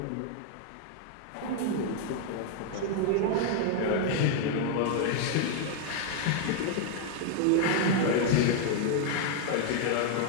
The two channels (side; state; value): both; different; correlation 0.00